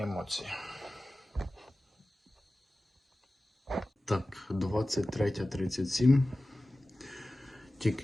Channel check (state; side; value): normal; both; correlation 0.96